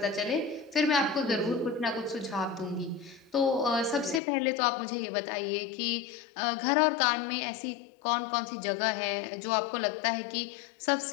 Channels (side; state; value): right; drops out; at 4.2 s